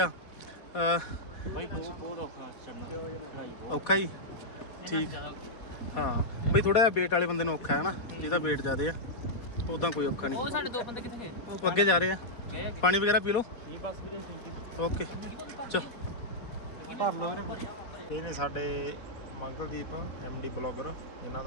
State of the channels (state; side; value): late; right; 4.2 ms